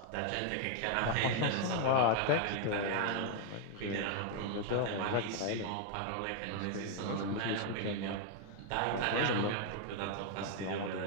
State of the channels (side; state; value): both; different; correlation 0.00